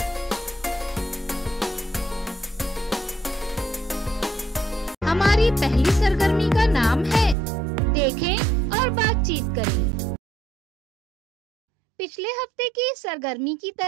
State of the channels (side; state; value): left; drops out; at 7.4 s